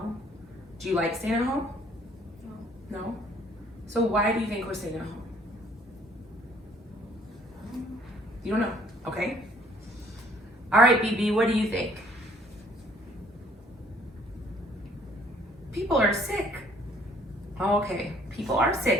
Do you like staying at home? No. No? So why do you think we're staying at home? You don't know? Okay. All right, BB, what do you think? People are sick. Oh, okay. People are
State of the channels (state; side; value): normal; both; correlation 0.60